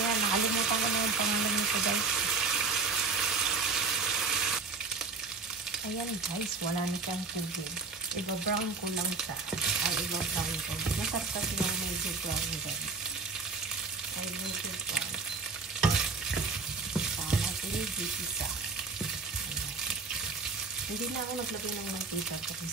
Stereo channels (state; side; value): quieter; left; 4.3 dB